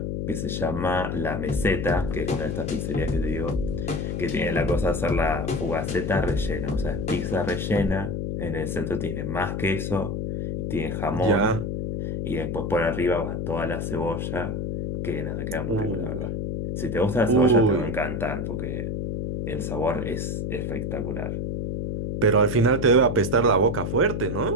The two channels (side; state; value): left; noise; hum, 2 dB below the sound